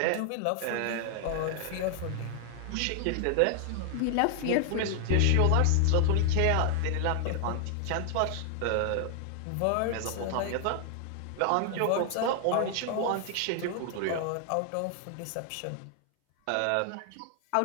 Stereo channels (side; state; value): both; different; correlation 0.00